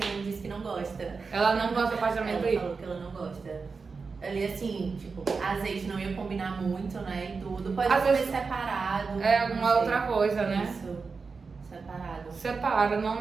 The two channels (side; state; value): left; quieter; 4.7 dB